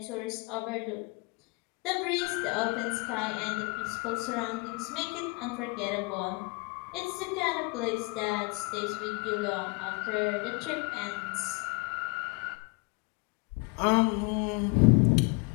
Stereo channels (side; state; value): right; quieter; 30.0 dB